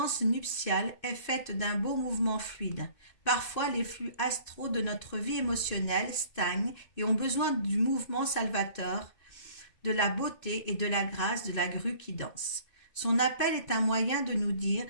nuptiale est faite d'un beau mouvement fluide. Parfois, les flux astraux de notre vie émotionnelle stagnent et ont besoin du mouvement salvateur, de la beauté et de la grâce de la grue qui danse. Son appel est un moyen de nous dire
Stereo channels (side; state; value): right; late; 2.6 ms